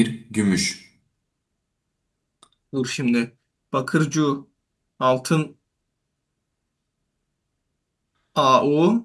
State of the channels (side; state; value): both; identical; correlation 1.00